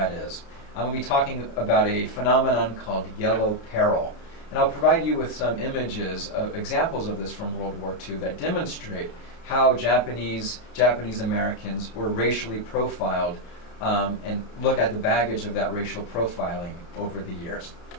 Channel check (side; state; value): right; late; 31 ms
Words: is. I'm going to be talking about a phenomenon called yellow peril. And I'll provide you with some images, examples of this from World War II that demonstrate how Japanese Americans were racially profiled and look at the baggage of that racial profiling over the years.